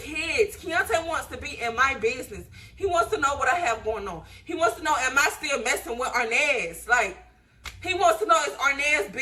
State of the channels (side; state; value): both; identical; correlation 1.00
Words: Keonte wants to be in my business. He wants to know what I have going on. He wants to know, am I still messing with Arnaz? Like, he wants to know, is Arnaz